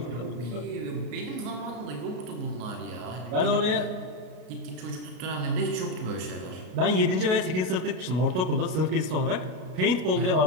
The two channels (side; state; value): left; late; 33 ms